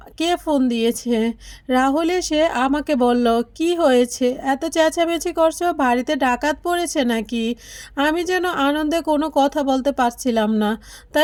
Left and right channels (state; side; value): identical; both; correlation 1.00